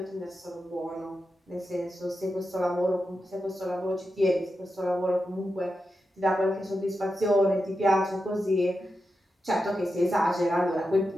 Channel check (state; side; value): normal; both; correlation 0.89